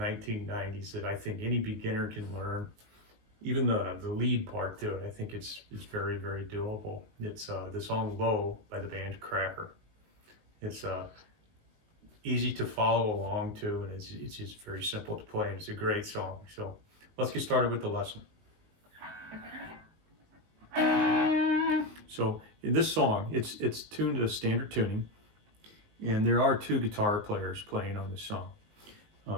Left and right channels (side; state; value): left; late; 19 ms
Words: that I think any beginner can learn. Even the lead part to it, I think it's very, very doable. It's the song Low by the band Cracker. It's easy to follow along to, and it's just very simple to play, and it's a great song. So let's get started with the lesson. So in this song, it's tuned to standard tuning, and there are two guitar players playing on this song.